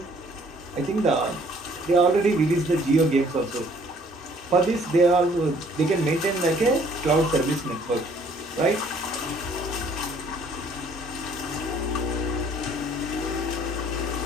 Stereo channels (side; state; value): both; normal; correlation 0.59